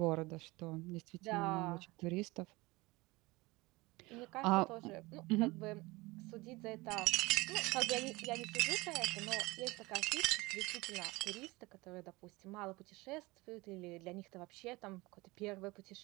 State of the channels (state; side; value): quieter; left; 22.3 dB